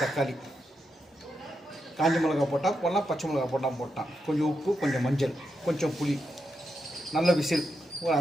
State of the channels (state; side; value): normal; both; correlation 0.85